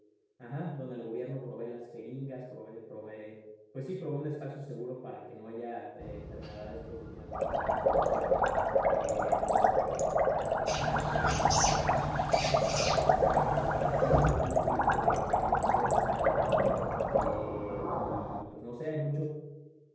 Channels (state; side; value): identical; both; correlation 1.00